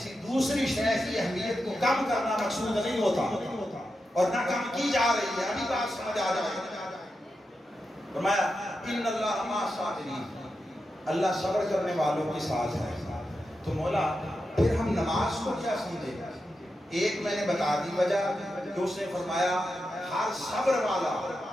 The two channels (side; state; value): both; normal; correlation 0.88